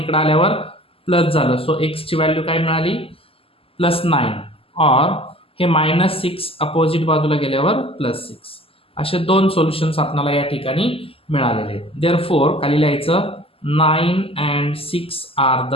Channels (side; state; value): right; late; 0.27 ms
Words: आल्यावर प्लस झालं. सो x ची व्हॅल्यू काय मिळाली +9 और हे -6 अपोजिट बाजूला गेल्यावर +6. असे दोन सोल्युशन्स आपल्याला या ठिकाणी मिळालेले आहेत. देअरफॉर खाली लिहायचं 9 and 6 are the